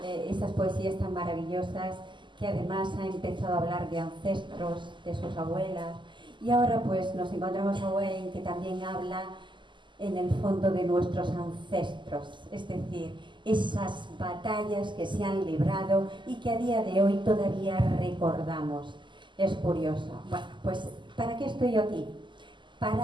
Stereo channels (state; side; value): late; left; 0.23 ms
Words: esas poesías tan maravillosas, que además ha empezado a hablar de ancestros, de sus abuelas, y ahora pues nos encontramos a Wayne, que también habla en el fondo de nuestros ancestros, es decir, esas batallas que se han librado y que a día de hoy todavía recordamos. Es curioso. Bueno, pues ¿para qué estoy yo aquí?